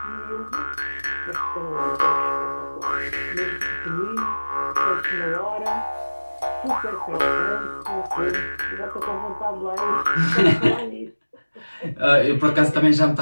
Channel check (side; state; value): both; inverted; correlation -1.00